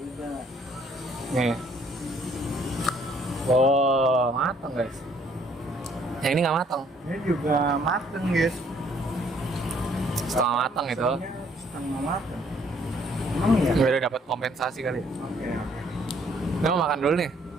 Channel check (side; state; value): both; normal; correlation 0.63